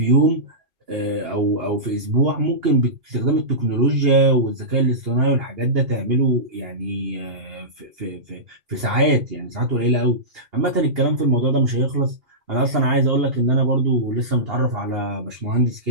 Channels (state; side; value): late; left; 2.8 ms